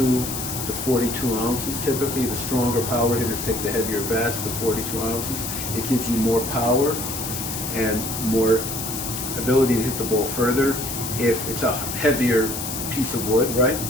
to 42 ounces typically. The stronger power hitters take the heavier bats, the 42 ounces. It gives you more power and more ability to hit the ball further if it's a heavier piece of wood, right?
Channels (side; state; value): left; noise; hiss, 5 dB below the sound